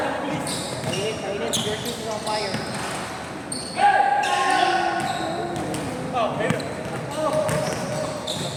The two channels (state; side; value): identical; both; correlation 1.00